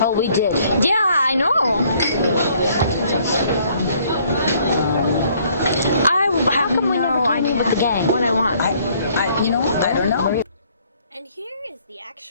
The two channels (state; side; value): inverted; both; correlation -0.63